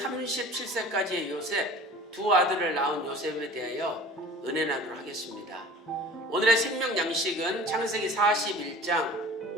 요셉, 두 아들을 낳은 요셉에 대하여 은혜 나누도록 하겠습니다. 오늘의 생명 양식은 창세기 41장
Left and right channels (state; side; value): normal; both; correlation 0.44